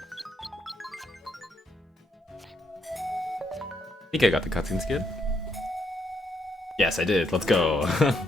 I think I got the cutscene skid. Yes, I did. Let's go.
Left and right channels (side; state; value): both; normal; correlation 0.76